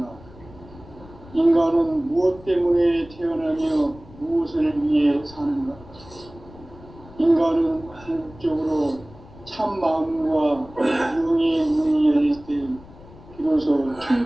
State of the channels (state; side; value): noise; left; rumble, 20 dB below the sound